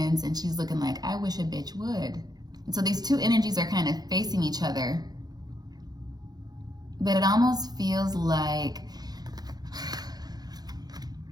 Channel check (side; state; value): left; late; 0.19 ms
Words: and she's looking like, I wish a bitch would. And so these two energies are kind of facing each other. But it almost feels like